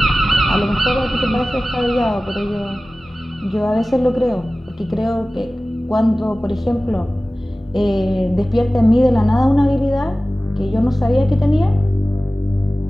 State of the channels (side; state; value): both; normal; correlation 0.97